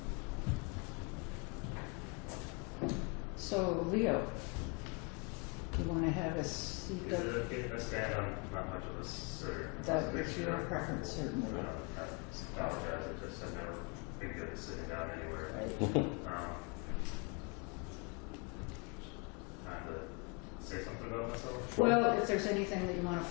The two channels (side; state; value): right; quieter; 31.0 dB